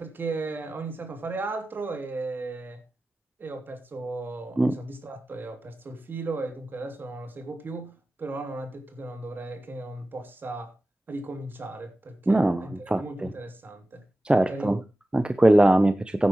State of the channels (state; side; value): normal; both; correlation 0.95